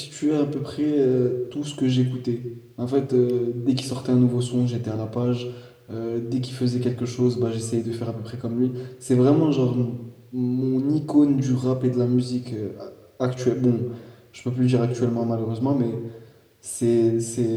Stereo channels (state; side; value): identical; both; correlation 1.00